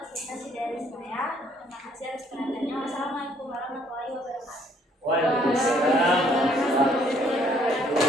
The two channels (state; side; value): normal; both; correlation 0.64